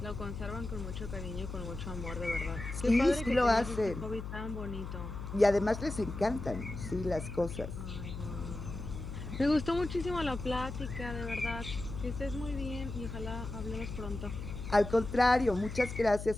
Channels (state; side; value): noise; left; hum, 8 dB below the sound